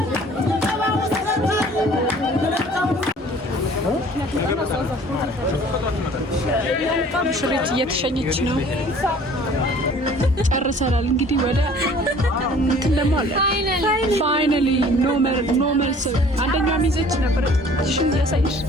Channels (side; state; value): both; normal; correlation 0.51